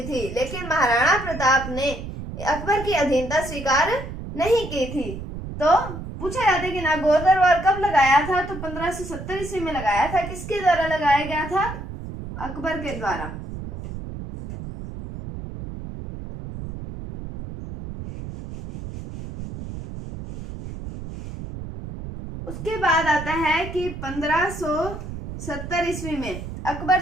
थी, लेकिन महाराणा प्रताप ने अकबर की अधीनता स्वीकार नहीं की थी। तो पूछा जाता है कि नागौर दरबार कब लगाया था? तो 1570 ईस्वी में लगाया था। किसके द्वारा लगाया गया था? अकबर के द्वारा। उसके बाद आता है कि 1570 ईस्वी में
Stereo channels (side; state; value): right; noise; rumble, 9 dB below the sound